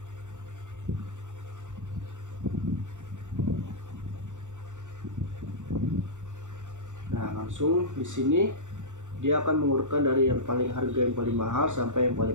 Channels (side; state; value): left; late; 0.85 ms